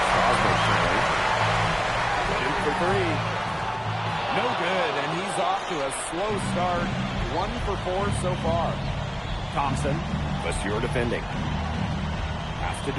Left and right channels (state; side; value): identical; both; correlation 1.00